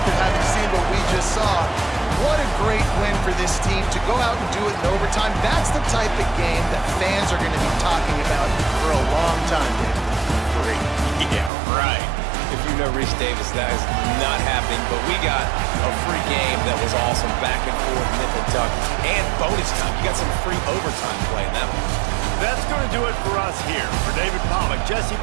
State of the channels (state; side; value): drops out; left; at 11.5 s